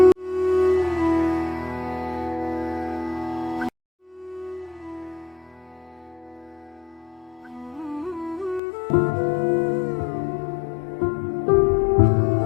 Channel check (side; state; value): right; drops out; at 8.6 s